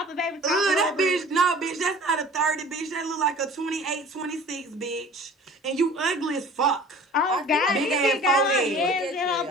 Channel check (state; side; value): normal; both; correlation 0.45